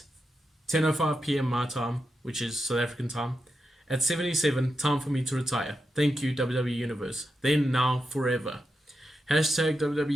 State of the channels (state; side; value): normal; both; correlation 0.87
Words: 10:05 p.m. my time, which is South African time. At 77, time for me to retire. Thank you, WWE Universe. Then, now, forever. Hashtag